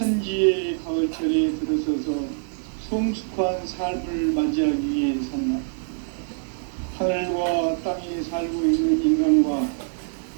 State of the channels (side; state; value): left; silent; 62 dB below the other